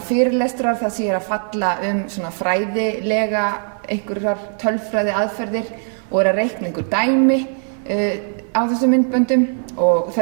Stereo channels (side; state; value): left; silent; 61 dB below the other